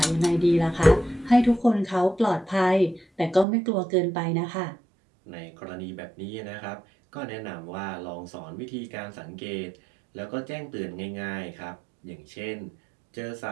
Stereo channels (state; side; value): drops out; left; at 3.5 s